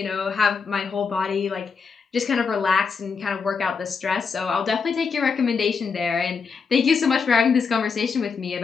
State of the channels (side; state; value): right; quieter; 5.4 dB